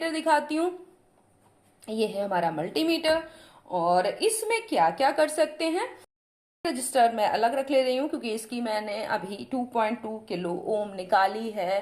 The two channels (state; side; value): identical; both; correlation 1.00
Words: दिखाती हूँ। ये है हमारा मल्टीमीटर, और इसमें क्या क्या कर सकते हैं। रजिस्टर मैं अलग रख ले रही हूँ क्योंकि इसकी मैंने अभी 2.2 किलो ओम निकाली है